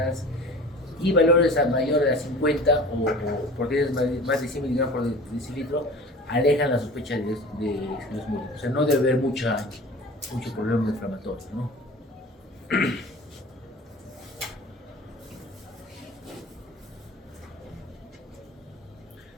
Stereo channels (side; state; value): both; normal; correlation 0.40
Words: y valores mayores a 50 o proteínas más de 100 miligramos por decilitro alejan la sospecha de esclerosis múltiple. O sea, no debe haber mucho problema inflamatorio, ¿no?